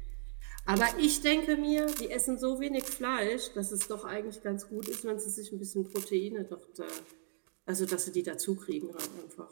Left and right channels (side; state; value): left; silent; digital silence